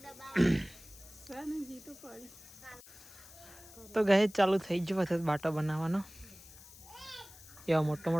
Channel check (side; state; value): left; noise; hiss, 19 dB below the sound